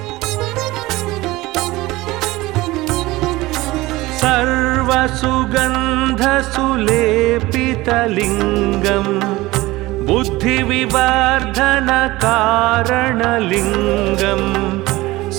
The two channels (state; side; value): quieter; left; 19.4 dB